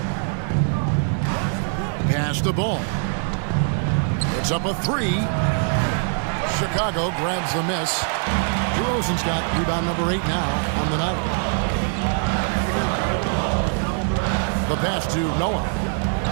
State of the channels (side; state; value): left; silent; 58 dB below the other